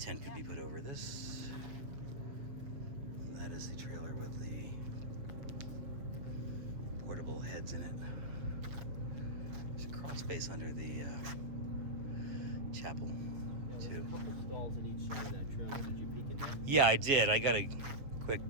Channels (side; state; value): left; late; 7.0 ms